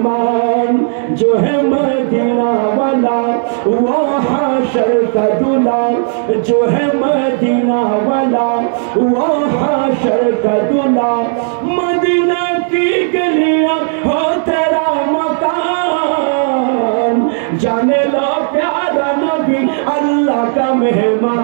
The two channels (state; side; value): silent; left; digital silence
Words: जो है मदीना वाला वो हाशर का दूल्हा, जो है मदीना वाला वो हाशर का दूल्हा, मदीना की गलियां हो तेरा मकान, जाने लो प्यारा नबी अल्लाह का